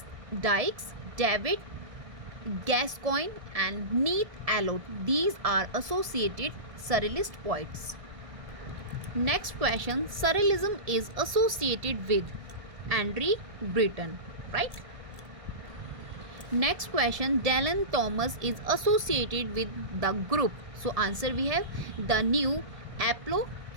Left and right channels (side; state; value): left; late; 1.6 ms